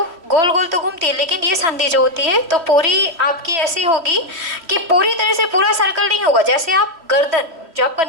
गोल गोल तो घूमती है, लेकिन ये संधि जो होती है तो पूरी आपकी ऐसी होगी कि पूरी तरह से पूरा सर्कल नहीं होगा। जैसे आप गर्दन, जो आपका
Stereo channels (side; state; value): left; late; 3.0 ms